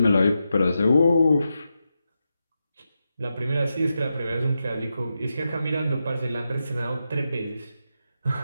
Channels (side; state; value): both; inverted; correlation -0.88